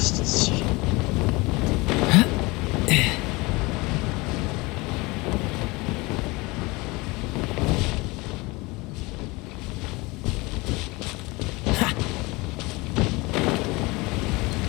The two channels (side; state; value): right; quieter; 24.0 dB